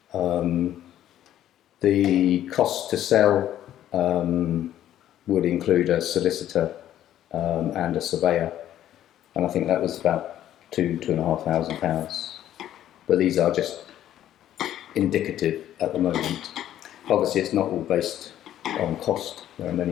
The cost to sell would include a solicitor and a surveyor, and I think that was about £2,500. But these are just indicative at the moment. Obviously, it's not all based on cost. There are many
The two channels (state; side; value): quieter; right; 11.9 dB